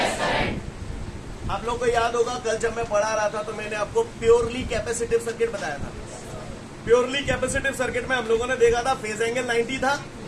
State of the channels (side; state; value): both; identical; correlation 1.00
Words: करंट। आप लोग को याद होगा कल जब मैं पढ़ा रहा था तो मैंने आपको प्योरली कैपेसिटिव सर्किट बताया था। प्योरली कैपेसिटिव सर्किट में हम लोगों ने देखा था फेज एंगल 90 था,